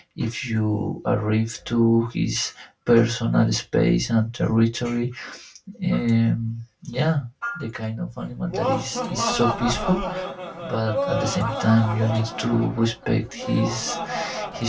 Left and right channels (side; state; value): both; identical; correlation 1.00